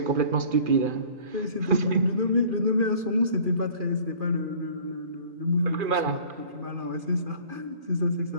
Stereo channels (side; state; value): left; late; 2.4 ms